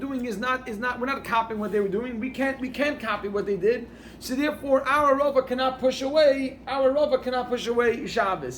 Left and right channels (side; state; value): both; identical; correlation 1.00